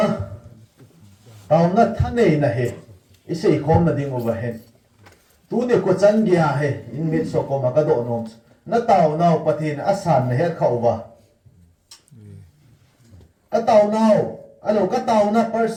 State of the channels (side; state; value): both; identical; correlation 1.00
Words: na thân này na he isei khom na ding overhead tu ne ko chan gya he in mit so ko ma ka do nom na tàu nào pathin asan na he khau wa ka tàu nào alo ka tàu na